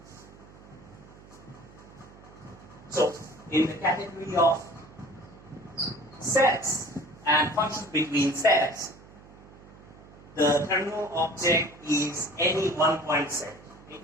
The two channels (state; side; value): noise; right; hum, 21 dB below the sound